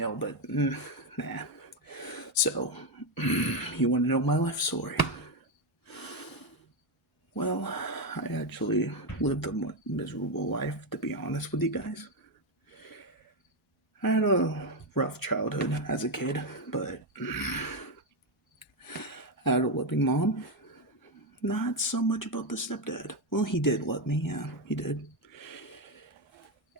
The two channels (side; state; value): both; normal; correlation 0.07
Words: but nah. So, you want to know my life story? Well, I actually lived a miserable life, to be honest with you guys. I had a rough childhood as a kid, but I had a loving mom. Not so much about the stepdad. Well, he did love me, yeah, he did.